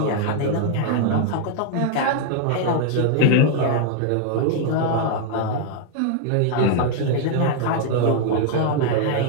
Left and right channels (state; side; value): different; both; correlation 0.00